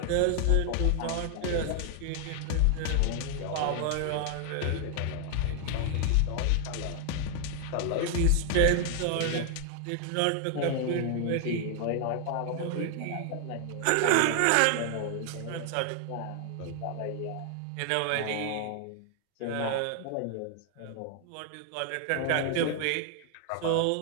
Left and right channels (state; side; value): different; both; correlation 0.00